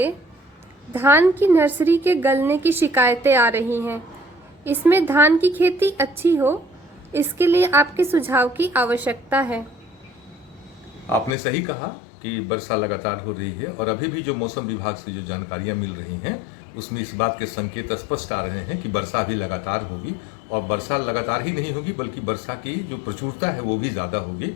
धान की नर्सरी के गलने की शिकायतें आ रही हैं। इसमें धान की खेती अच्छी हो, इसके लिए आपके सुझाव की आवश्यकता है। आपने सही कहा कि वर्षा लगातार हो रही है और अभी भी जो मौसम विभाग से जो जानकारियां मिल रही हैं उसमें इस बात के संकेत स्पष्ट आ रहे हैं कि वर्षा भी लगातार होगी। और वर्षा लगातार ही नहीं होगी बल्कि वर्षा की जो प्रचुरता है वो भी ज़्यादा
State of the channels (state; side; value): drops out; right; at 11.3 s